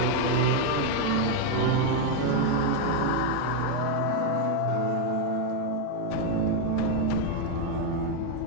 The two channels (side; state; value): both; different; correlation 0.01